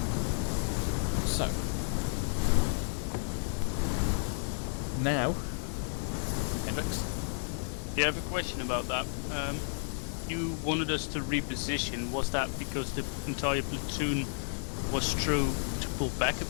So, now, Hendrix? Yeah, I have a question about that. You wanted us to reposition. Was that because the entire platoon was true to pull back a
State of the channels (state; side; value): silent; right; 56 dB below the other